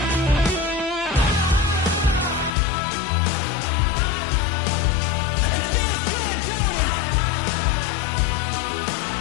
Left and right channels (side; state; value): right; drops out; at 2.5 s